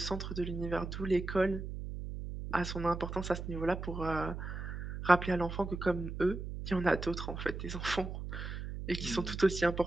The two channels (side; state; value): right; noise; hum, 6 dB below the sound